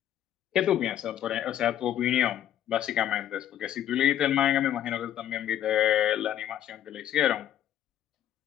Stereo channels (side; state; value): right; quieter; 11.2 dB